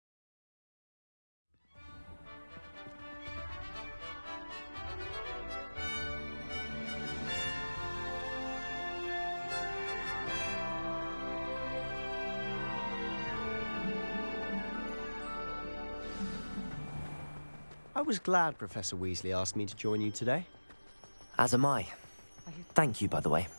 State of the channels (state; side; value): inverted; both; correlation -1.00